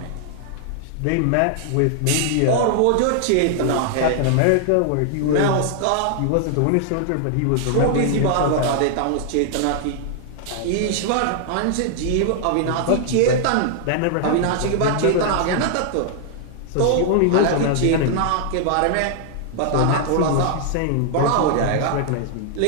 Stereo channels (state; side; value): different; both; correlation 0.00